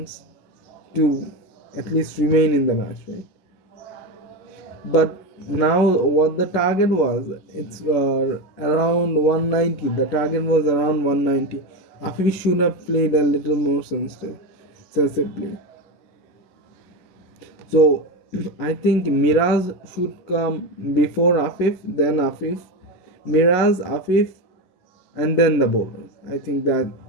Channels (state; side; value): late; right; 11 ms